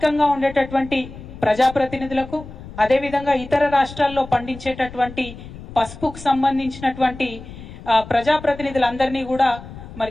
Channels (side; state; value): left; noise; rumble, 15 dB below the sound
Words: ఉండేటటువంటి ప్రజాప్రతినిధులకు, అదేవిధంగా ఇతర రాష్ట్రాల్లో పండించేటటువంటి పసుపుకు సంబంధించినటువంటి ప్రజాప్రతినిధులందరినీ కూడా